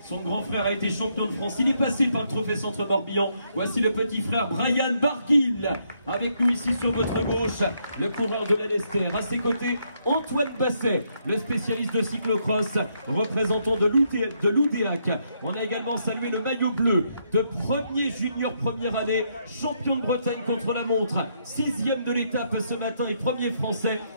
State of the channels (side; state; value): both; inverted; correlation -0.75